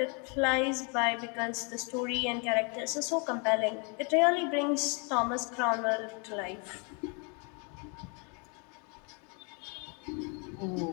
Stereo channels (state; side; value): quieter; right; 35.1 dB